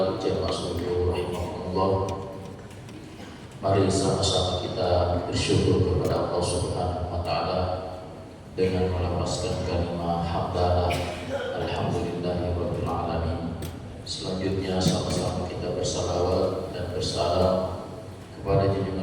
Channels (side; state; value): both; identical; correlation 1.00